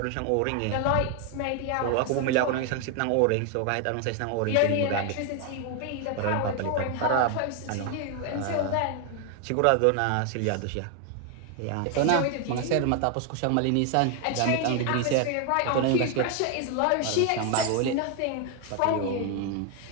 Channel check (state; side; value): different; both; correlation 0.00